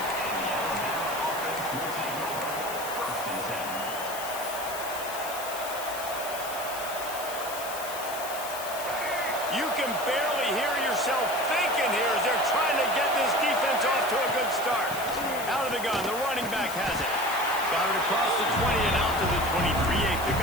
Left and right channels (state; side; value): noise; left; hiss, 10 dB below the sound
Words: You can barely hear yourself thinking here as they're trying to get this defense off to a good start. Out of the gun, the running back has it. Got it across the 20 and out to the 23, a